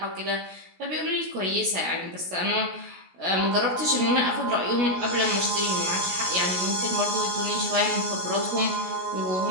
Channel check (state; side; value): late; left; 16 ms